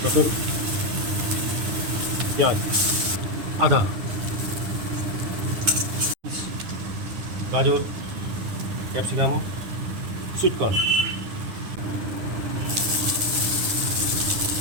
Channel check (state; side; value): late; left; 9.8 ms